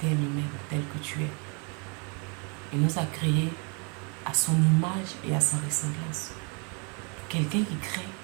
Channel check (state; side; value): quieter; left; 34.4 dB